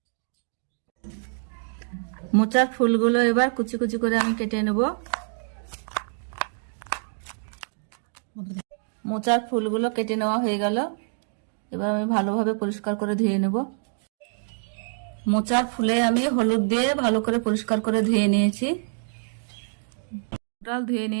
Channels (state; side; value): silent; left; digital silence